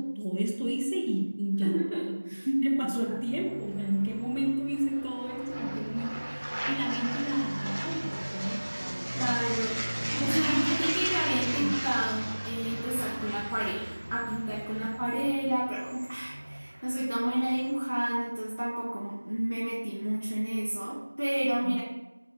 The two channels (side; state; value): both; inverted; correlation -1.00